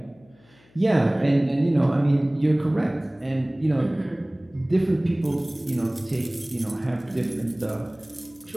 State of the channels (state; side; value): noise; left; hum, 30 dB below the sound